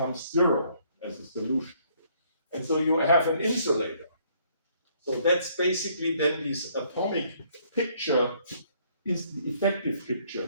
zero as a solution. And so you have an insulator. So that's basically then this atomic picture is the effective picture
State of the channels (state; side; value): inverted; both; correlation -0.65